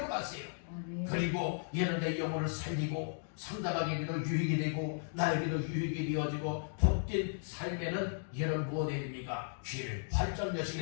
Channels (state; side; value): silent; right; digital silence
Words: 마세요. 그리고 여러분의 영혼을 살리고 상대방에게도 유익이 되고 나에게도 유익이 되어지고 복된 삶에는 여러분 무엇 해야 됩니까? 귀를 활짝